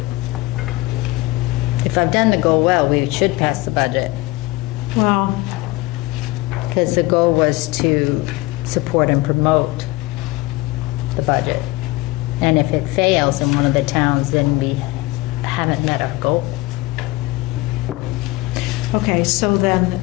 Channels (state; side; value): quieter; right; 20.3 dB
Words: If I've done the goal well, we should pass the budget. Well, Because the goal was to support and promote the budget. And if it fails in one of the towns, then we haven't met our goal. okay, so then